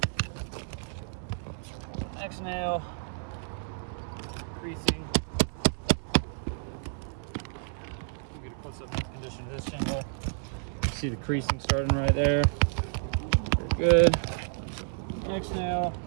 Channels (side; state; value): left; silent; digital silence